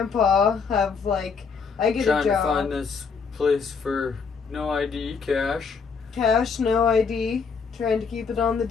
I get a job. Trying to find this place for no ID, cash. Cash, no ID. Trying to keep it on the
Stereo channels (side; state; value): right; quieter; 5.5 dB